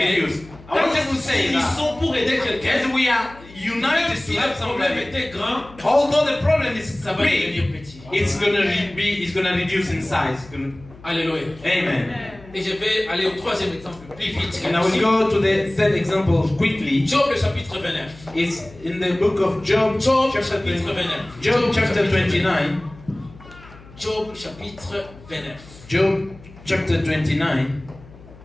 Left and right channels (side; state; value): left; noise; hum, 21 dB below the sound